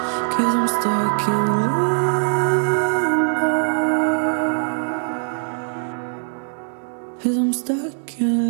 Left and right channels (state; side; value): silent; left; digital silence